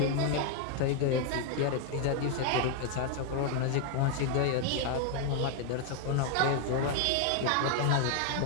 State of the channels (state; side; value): different; both; correlation 0.00